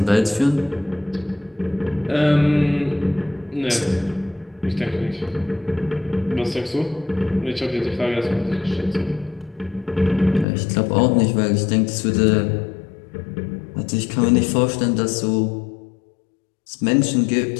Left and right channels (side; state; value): right; drops out; at 10.5 s